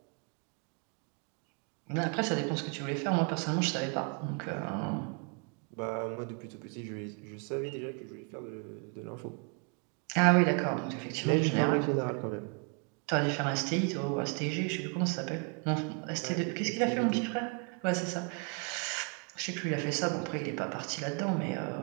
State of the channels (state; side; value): quieter; left; 35.4 dB